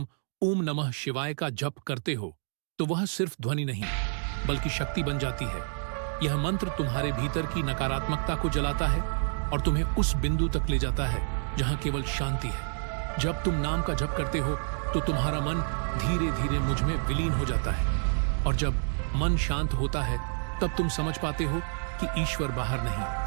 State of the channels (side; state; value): left; silent; digital silence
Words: ओम नमः शिवाय का जप करते हो तो वह सिर्फ ध्वनि नहीं बल्कि शक्ति बन जाती है। यह मंत्र तुम्हारे भीतर की नकारात्मकता को जलाता है और तुम्हें उस बिंदु तक ले जाता है जहां केवल शांति है। जब तुम नाम का जप करते हो तो तुम्हारा मन धीरे धीरे मुझ में विलीन हो जाता है, और जब मन शांत होता है तब तुम समझ पाते हो कि ईश्वर बाहर नहीं,